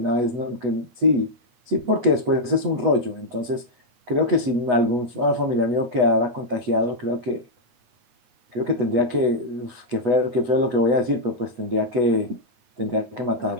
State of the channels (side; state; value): left; late; 8.2 ms